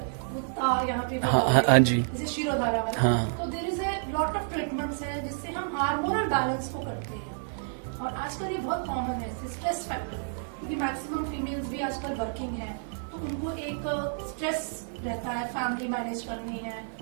वो यहाँ पे वो डाल रहे हाँ हैं, जी। जैसे शिरोधारा वाला। हाँ। तो there is a lot of treatments हैं जिससे हम हार्मोनल बैलेंस को करते हैं। और आजकल ये बहुत कॉमन है, स्ट्रेस फैक्टर, क्योंकि मैक्सिमम फीमेल्स भी आजकल वर्किंग हैं, तो उनको एक स्ट्रेस रहता है, फैमिली मैनेज करनी है,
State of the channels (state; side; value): silent; left; digital silence